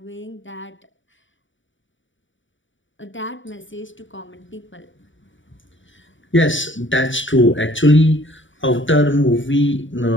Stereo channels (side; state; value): right; late; 0.56 ms